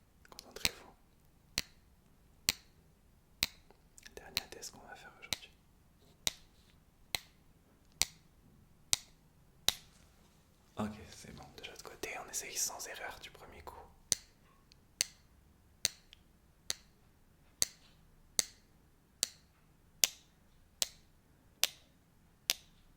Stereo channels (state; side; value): identical; both; correlation 1.00